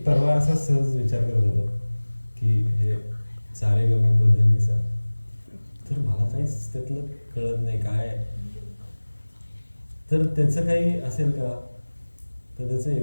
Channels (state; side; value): inverted; both; correlation -1.00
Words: परवा असा सहज विचार करत होतो की हे सारे गम पधनिसा, तर मला काहीच त्यातलं कळत नाही काय, तर त्याचं काही असेल का, तर त्याचं